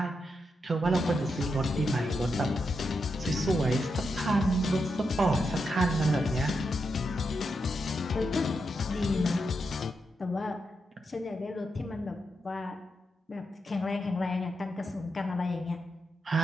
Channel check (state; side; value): normal; both; correlation 0.85